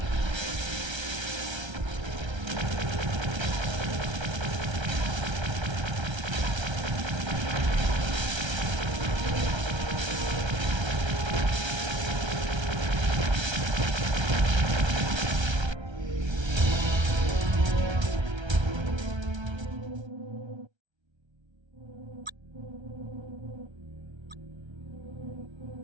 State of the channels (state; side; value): late; left; 1.3 ms